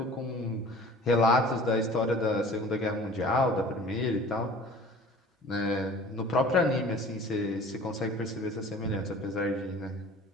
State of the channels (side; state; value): both; normal; correlation 0.45